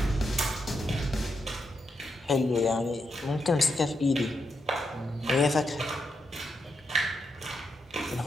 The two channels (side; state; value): both; normal; correlation 0.82